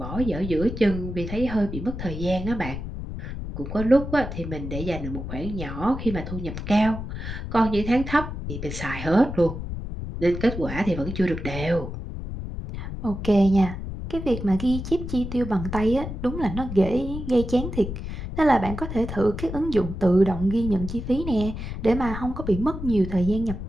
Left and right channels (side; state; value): left; noise; rumble, 7 dB below the sound